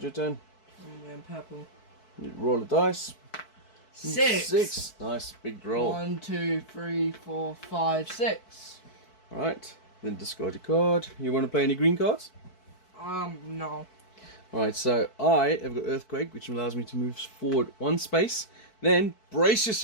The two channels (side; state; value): right; late; 4.6 ms